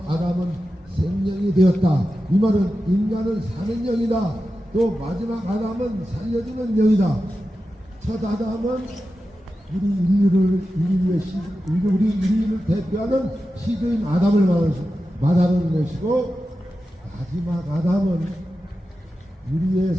아담은 생명이 되었다, 이 말은 인간은 사는 영이다. 또 마지막 아담은 살려주는 영이다. 첫 아담은 우리 인류를 대표하는 시조인 아담을 말하는 것이고, 마지막 아담은 우리의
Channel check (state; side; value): normal; both; correlation 0.92